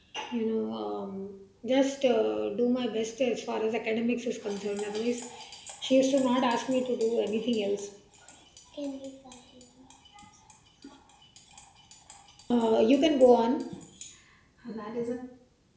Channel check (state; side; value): identical; both; correlation 1.00